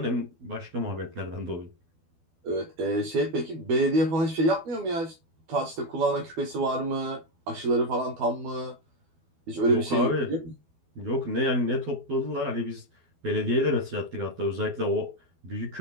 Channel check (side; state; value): left; late; 12 ms